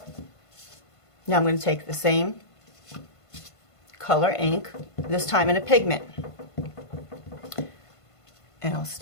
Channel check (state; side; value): late; right; 1.5 ms